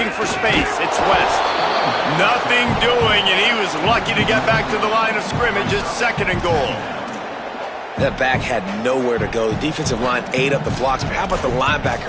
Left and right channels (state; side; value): identical; both; correlation 1.00